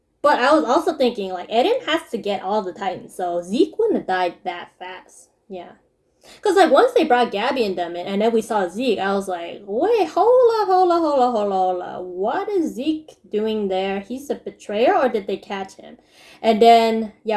But I was also thinking, like, Eren has to get all the Titans. So Zeke wouldn't have died that fast. Yeah. Because, like, once they brought Gabi and them in, and then we saw Zeke, I was like, wait, hold on. What is Zeke doing there? He's a betrayer, or did they catch him? And then,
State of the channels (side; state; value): both; identical; correlation 1.00